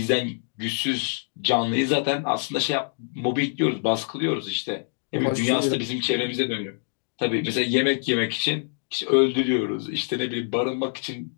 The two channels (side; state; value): right; silent; 62 dB below the other